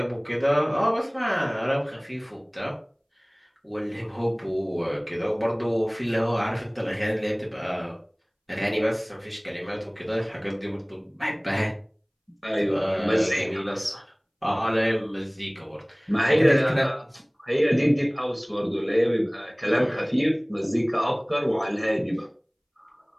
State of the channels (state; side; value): identical; both; correlation 1.00